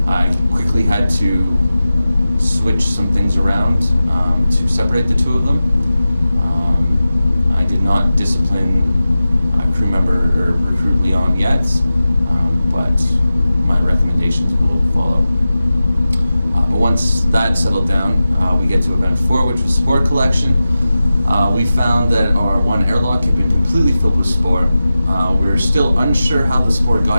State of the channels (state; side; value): inverted; both; correlation -0.94